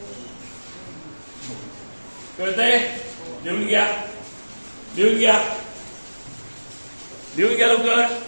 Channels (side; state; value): both; inverted; correlation -1.00